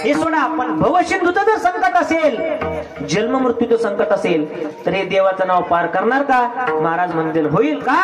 हे सोडा. पण भवसिंधूचं जर संकट असेल, जन्म मृत्यूचं संकट असेल, तर हे देवाचं नाव पार करणार का. महाराज म्हणतील होईल का,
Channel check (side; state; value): both; identical; correlation 1.00